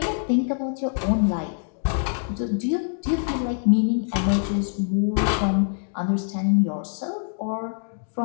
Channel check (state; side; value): silent; right; digital silence